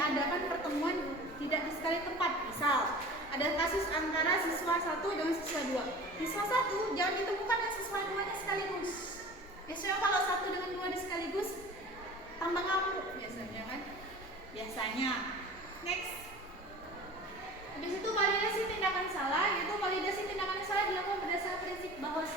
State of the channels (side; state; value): both; normal; correlation 0.40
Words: pertemuan tidak di sekali tempat. Misal ada kasus antara siswa 1 dengan siswa 2. Siswa 1 jangan ditemukan dengan siswa 2-nya sekaligus. Biasanya kalau 1 dengan 2 di sekaligus tambah ngamuk biasanya kan. Biasanya. Next. Habis itu validasi tindakan salah, yaitu validasi tindakan salah dilakukan berdasarkan prinsip bahwa